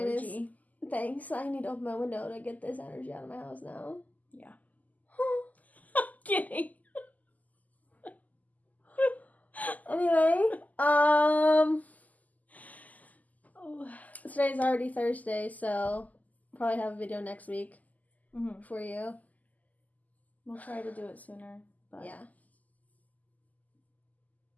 Thanks. I need to open my window to get this energy out of my house now. Yeah. I'm kidding. Anyway, today's already Thursday, so probably have a video next week for you. We'll try to do it sooner, but yeah,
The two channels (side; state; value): right; late; 0.079 ms